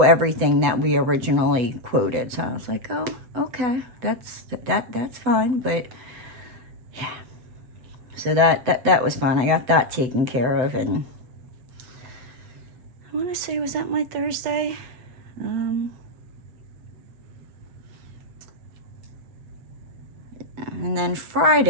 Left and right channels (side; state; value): left; late; 8.0 ms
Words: everything that we originally quoted. So I was like, oh, okay, that's fine. But yeah, so that was fun. I got that taken care of. And I want to say, was that my Thursday? And then